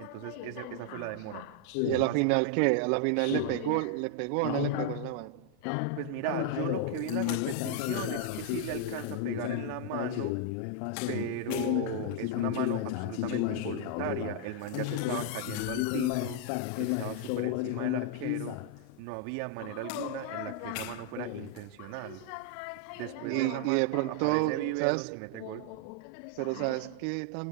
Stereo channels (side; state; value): both; different; correlation 0.00